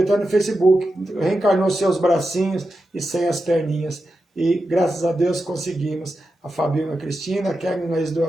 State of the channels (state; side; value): normal; both; correlation 0.89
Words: até no Facebook, reencarnou seus bracinhos e sem as perninhas. E graças a Deus conseguimos. A Fabinho, a Cristina, a Kevin, a do